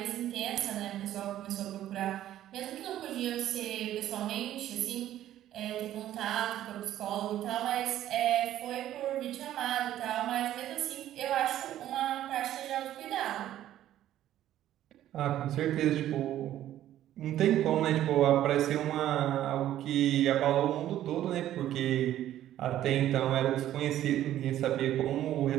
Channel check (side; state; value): left; quieter; 12.6 dB